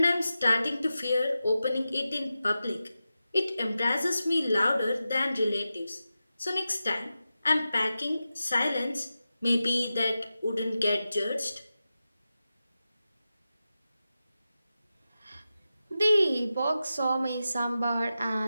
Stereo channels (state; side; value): inverted; both; correlation -0.92